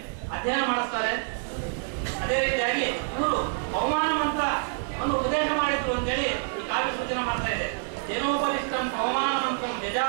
ಅಧ್ಯಯನ ಮಾಡಿಸ್ತಾರೆ. ಅದೇ ರೀತಿಯಾಗಿ ಇವರು ಪವಮಾನ ಮಂತ್ರವನ್ನು ಉಪದೇಶ ಮಾಡಿದ್ರು ಅಂತೇಳಿ ಈ ಕಾವ್ಯ ಸೂಚನೆ ಮಾಡ್ತಾ ಇದೆ. ದಿನೋಪದಿಷ್ಟಂ ಪವಮಾನ ಮಂತ್ರಂ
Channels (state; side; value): silent; left; digital silence